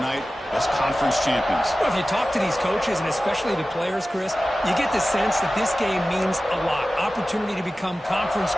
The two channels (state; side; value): normal; both; correlation 0.96